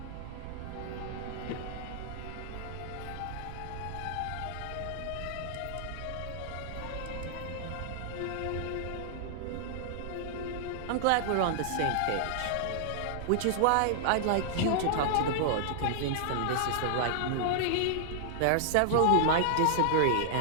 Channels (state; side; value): different; both; correlation -0.01